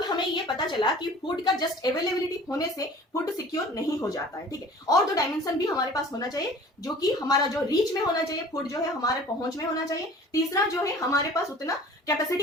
हमें ये पता चला कि फूड का जस्ट अवेलेबिलिटी होने से फूड सिक्योर नहीं हो जाता है, ठीक है। और दो डायमेंशन भी हमारे पास होना चाहिए, जो कि हमारा जो रीच में होना चाहिए, फूड जो है हमारे पहुंच में होना चाहिए, तीसरा जो है हमारे पास उतना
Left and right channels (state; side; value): normal; both; correlation 0.46